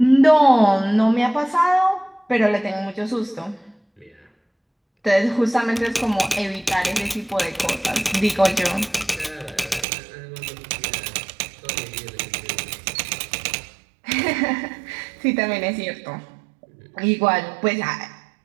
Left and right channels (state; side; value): drops out; left; at 9.9 s